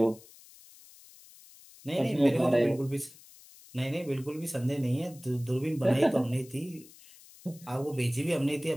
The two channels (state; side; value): noise; left; hiss, 22 dB below the sound